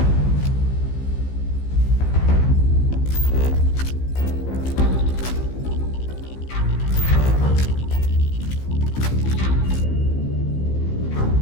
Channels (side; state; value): right; late; 15 ms